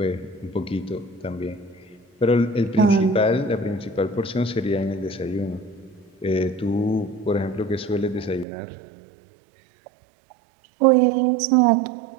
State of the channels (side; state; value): left; drops out; at 8.5 s